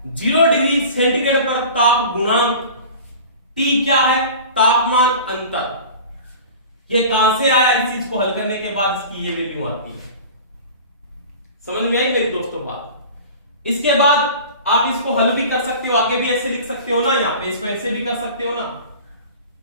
0 डिग्री सेंटीग्रेड पर ताप गुणांक। T क्या है, तापमान अंतर। ये कहां से आया, इस चीज को हल करने के बाद इसकी ये वैल्यू आती है। समझ में आई मेरी दोस्तों बात। इसके बाद आप इसको हल भी कर सकते हो, आगे भी ऐसे लिख सकते हो ना, यहां पे इसको ऐसे भी कर सकते हो ना,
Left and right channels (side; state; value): both; inverted; correlation -0.39